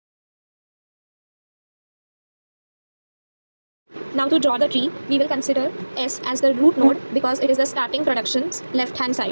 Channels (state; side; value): inverted; both; correlation -1.00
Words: Now to draw the tree, we will consider S as the root node because it is the starting production's left-hand